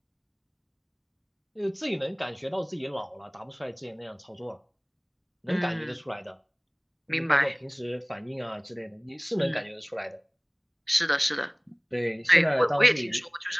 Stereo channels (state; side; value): identical; both; correlation 1.00